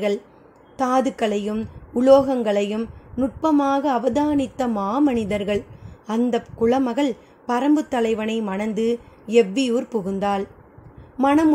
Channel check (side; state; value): both; identical; correlation 1.00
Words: தாதுக்களையும் உலோகங்களையும் நுட்பமாக அவதானித்த மாமனிதர்கள். அந்த குலமகள் பரம்பு தலைவனை மணந்து எவ்வியூர் புகுந்தாள்.